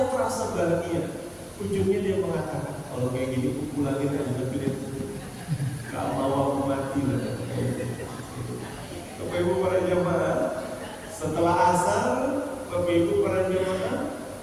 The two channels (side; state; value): both; identical; correlation 1.00